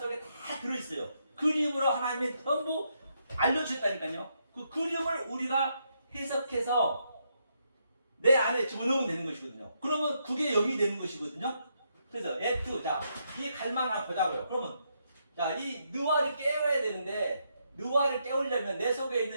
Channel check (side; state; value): both; inverted; correlation -0.78